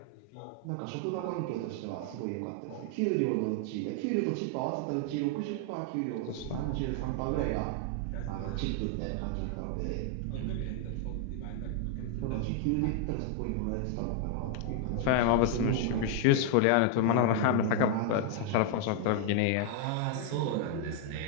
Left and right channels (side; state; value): both; different; correlation 0.00